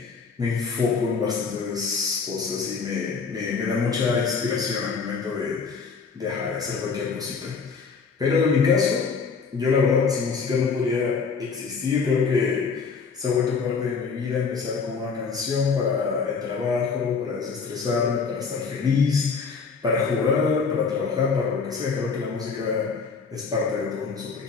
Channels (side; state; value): right; quieter; 5.2 dB